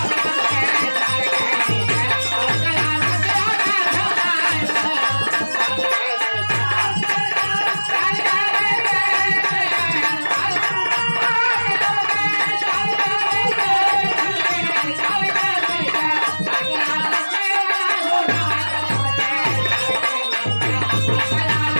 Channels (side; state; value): both; inverted; correlation -1.00